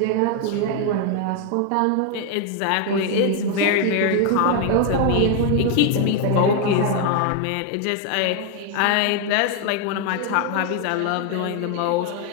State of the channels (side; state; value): both; different; correlation 0.01